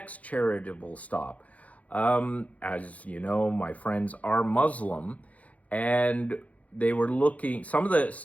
charitable stop. As you know, my friends are Muslim, and they were looking, some of the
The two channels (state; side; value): late; right; 0.069 ms